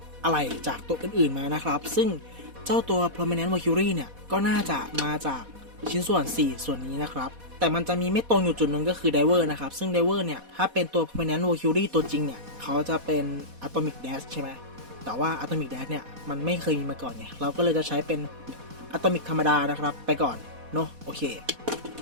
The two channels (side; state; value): left; late; 4.1 ms